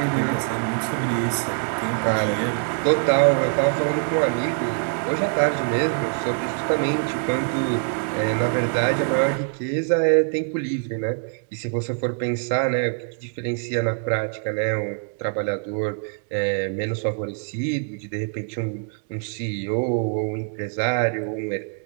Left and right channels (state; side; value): silent; left; 57 dB below the other